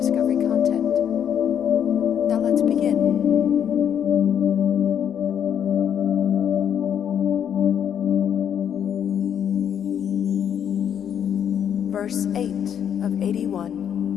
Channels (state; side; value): quieter; right; 8.8 dB